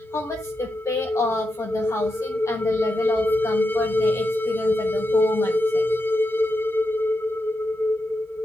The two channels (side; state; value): both; normal; correlation 0.87